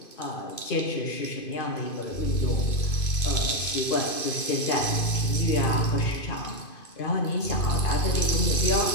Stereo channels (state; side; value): late; right; 2.5 ms